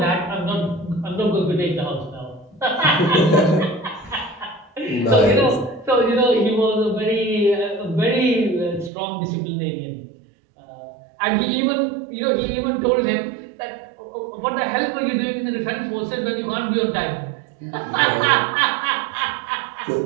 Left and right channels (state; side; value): drops out; left; at 8.9 s